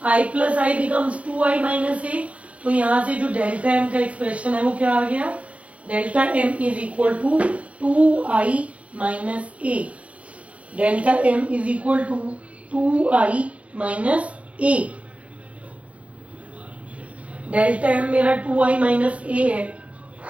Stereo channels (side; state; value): left; late; 0.063 ms